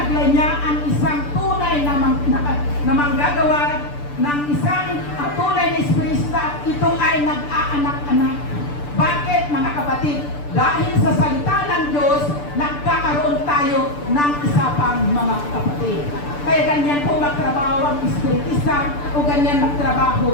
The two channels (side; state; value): right; late; 6.8 ms